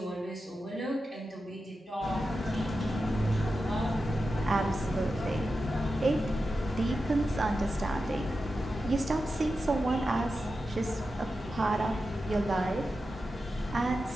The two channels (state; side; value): normal; both; correlation 0.91